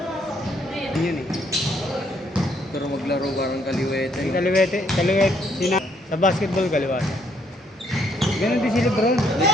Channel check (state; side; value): normal; both; correlation 0.70